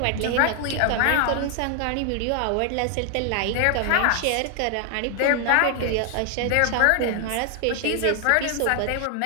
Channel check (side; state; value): both; different; correlation 0.00